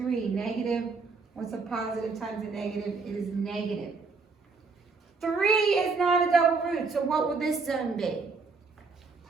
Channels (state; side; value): quieter; left; 4.4 dB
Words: Negative. What's a positive times a negative? It is negative. 3 is not a double root, so what will this zone be?